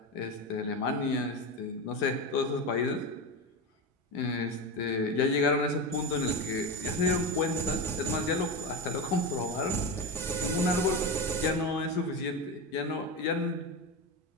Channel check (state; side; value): normal; both; correlation 0.19